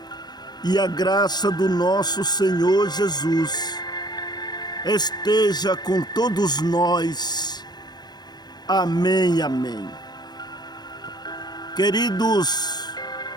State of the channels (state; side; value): late; right; 0.20 ms